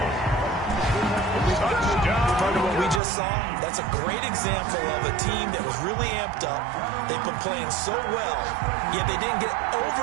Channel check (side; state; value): left; drops out; at 3.0 s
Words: Part of what we just saw, that's a great example of a team that was really amped up. They've been playing so well, yet they didn't get